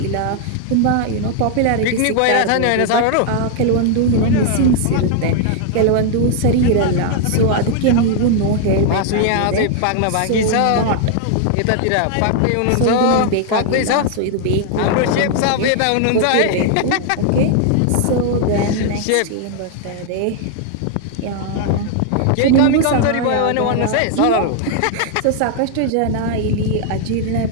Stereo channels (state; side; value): different; both; correlation 0.00